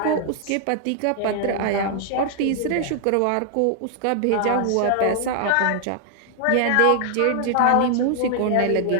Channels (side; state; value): both; different; correlation 0.00